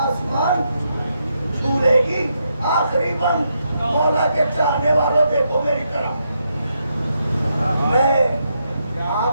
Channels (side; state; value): both; inverted; correlation -0.81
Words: آسمان چھو لے گی؟ آخری بند مولا کے چاہنے والوں دیکھو میری طرف، میں